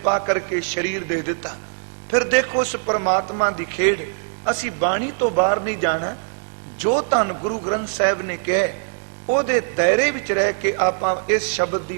ਕਰਕੇ ਸਰੀਰ ਦੇ ਦਿੱਤਾ। ਫਿਰ ਦੇਖੋ ਉਸ ਪਰਮਾਤਮਾ ਦੀ ਖੇਡ। ਅਸੀਂ ਬਾਣੀ ਤੋਂ ਬਾਹਰ ਨਹੀਂ ਜਾਣਾ। ਜੋ ਧੰਨ ਗੁਰੂ ਗ੍ਰੰਥ ਸਾਹਿਬ ਨੇ ਕਿਹਾ ਉਹਦੇ ਦਾਇਰੇ ਵਿੱਚ ਰਹਿ ਕੇ ਆਪਾਂ ਇਸ ਸ਼ਬਦ ਦੀ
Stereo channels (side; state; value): left; silent; digital silence